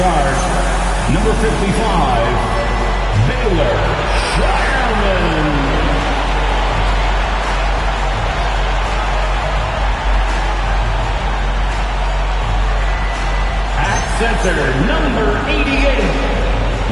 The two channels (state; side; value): identical; both; correlation 1.00